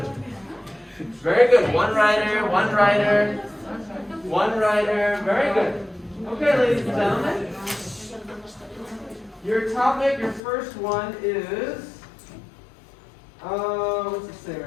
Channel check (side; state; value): right; drops out; at 10.4 s